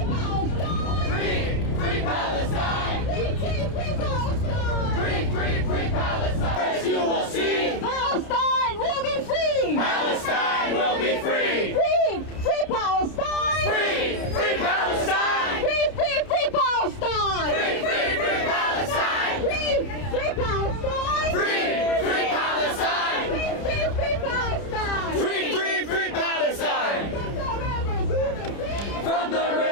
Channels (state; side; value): late; right; 30 ms